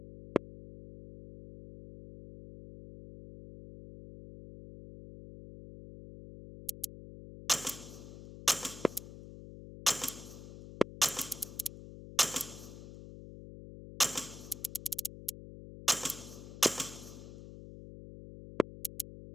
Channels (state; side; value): noise; left; hum, 13 dB below the sound